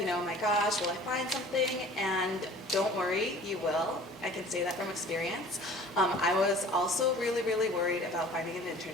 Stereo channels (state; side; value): normal; both; correlation 0.47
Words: oh my gosh, will I find something? And don't worry, you will. I can say that from experience. I was also really, really worried about finding an